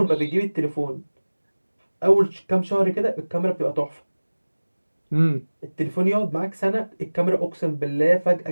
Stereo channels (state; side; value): inverted; both; correlation -1.00